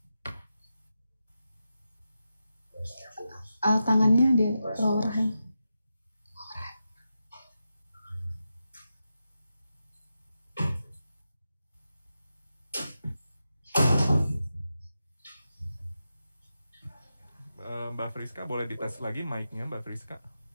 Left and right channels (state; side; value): inverted; both; correlation -0.89